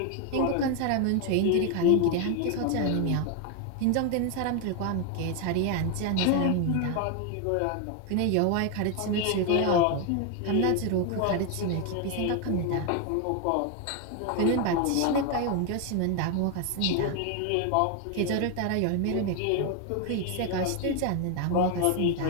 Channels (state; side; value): different; both; correlation 0.01